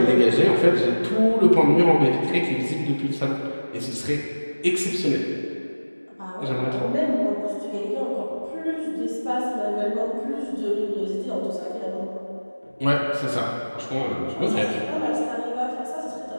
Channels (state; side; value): inverted; both; correlation -1.00